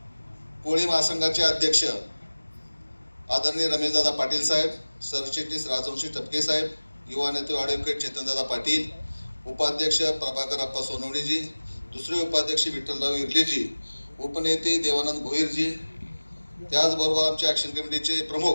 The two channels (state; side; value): inverted; both; correlation -1.00